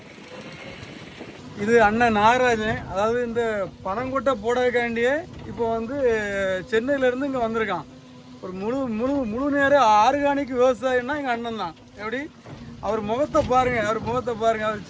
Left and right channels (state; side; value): identical; both; correlation 1.00